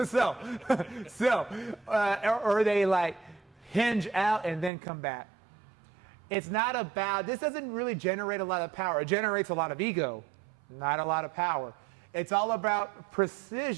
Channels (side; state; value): left; drops out; at 4.7 s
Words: Or they like hinge out and then come back. It's not about, this doesn't really generate a lot of power. It generates a lot of ego, not a lot of power. It's all about